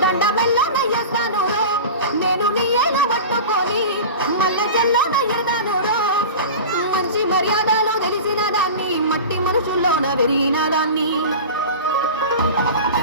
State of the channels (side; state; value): both; inverted; correlation -0.32